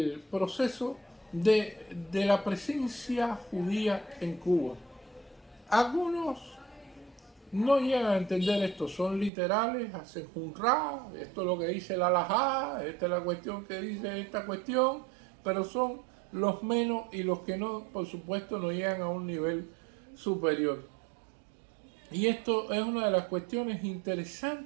proceso de la presencia judía en Cuba. Algunos no llegan a entender esto, son literales, hacen junra, esto es lo que dice la halajá, esta es la cuestión que dice esta cuestión, pero son los menos y los que no, por supuesto, no llegan a un nivel superior. Y esto es una de las cuestiones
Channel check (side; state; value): left; drops out; at 9.3 s